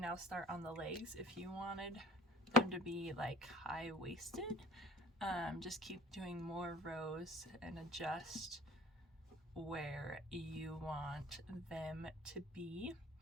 start on the legs. If you wanted them to be like high-waisted, just keep doing more rows and adjust where you want them to be.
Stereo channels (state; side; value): normal; both; correlation 0.45